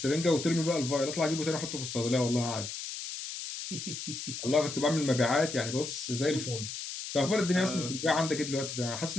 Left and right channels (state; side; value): noise; left; hiss, 7 dB below the sound